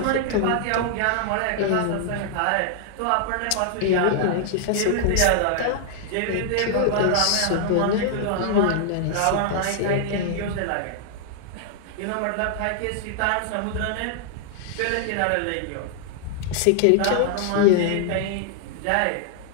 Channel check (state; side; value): different; both; correlation -0.01